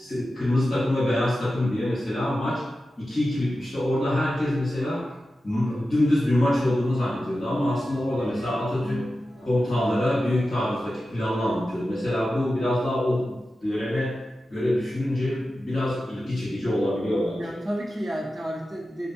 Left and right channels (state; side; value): normal; both; correlation 0.93